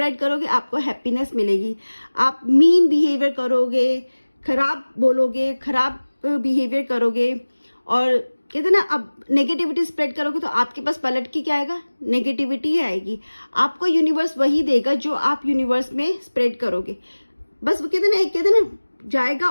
करोगे, आपको हैप्पीनेस मिलेगी। आप मीन बिहेवियर करोगे, खराब बोलोगे, खराब बिहेवियर करोगे, और कहते ना, अब नेगेटिविटी स्प्रेड करोगे तो आपके पास पलट के क्या आएगा, नेगेटिविटी ही आएगी। आपको यूनिवर्स वही देगा जो आप यूनिवर्स में स्प्रेड करोगे। बस वो कहते ना जाएगा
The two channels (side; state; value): both; inverted; correlation -1.00